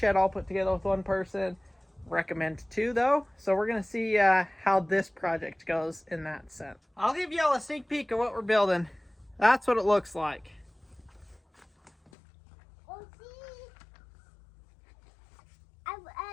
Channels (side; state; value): right; drops out; at 12.1 s